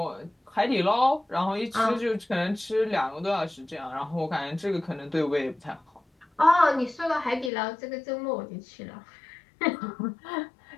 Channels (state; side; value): drops out; right; at 7.5 s